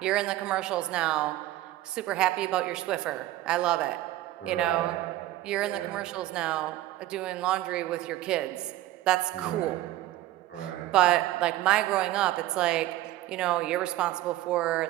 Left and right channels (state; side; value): quieter; left; 15.3 dB